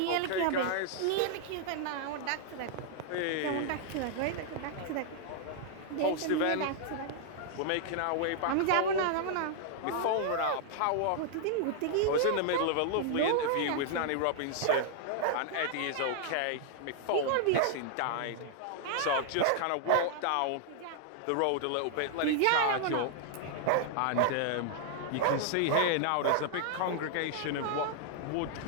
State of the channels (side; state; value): both; different; correlation -0.01